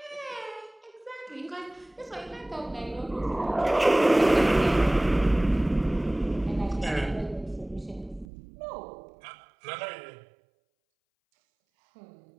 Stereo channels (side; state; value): left; drops out; at 8.2 s